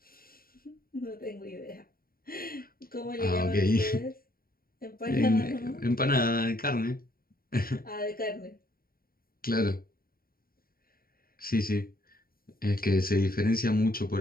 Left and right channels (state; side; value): late; right; 0.43 ms